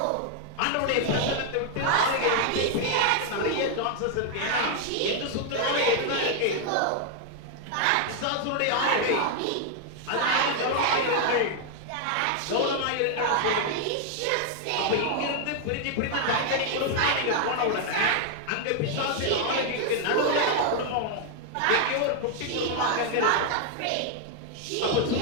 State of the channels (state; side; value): different; both; correlation 0.00